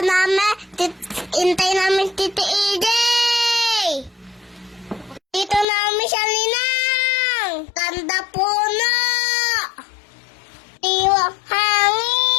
Intay namin Titi Ijay. Dito namin siya linang. Ganda puno. Iwang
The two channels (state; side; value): drops out; right; at 5.7 s